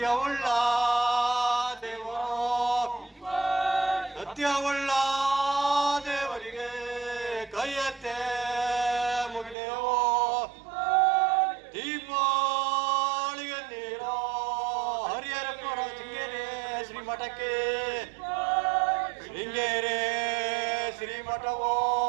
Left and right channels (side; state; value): left; drops out; at 9.6 s